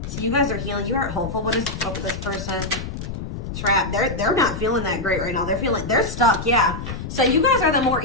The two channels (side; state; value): left; noise; rumble, 7 dB below the sound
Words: So you guys are healing. You are hopeful. What is up with this person? Trap. They're not feeling that great right now. They're stuck. Yeah. So you guys are the more